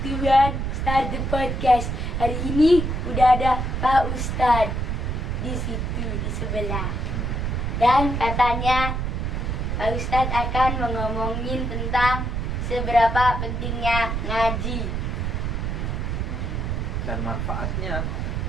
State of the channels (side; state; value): right; noise; rumble, 1 dB below the sound